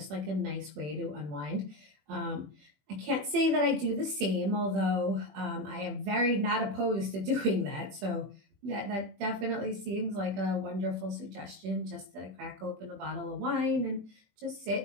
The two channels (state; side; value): late; left; 20 ms